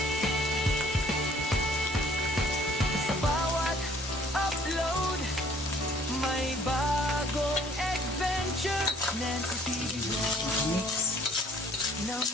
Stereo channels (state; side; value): normal; both; correlation 0.58